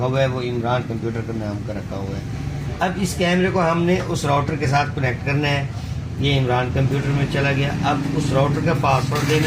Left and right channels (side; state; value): both; identical; correlation 1.00